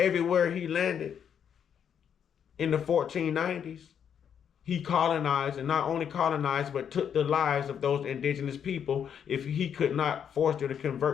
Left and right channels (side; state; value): right; quieter; 8.2 dB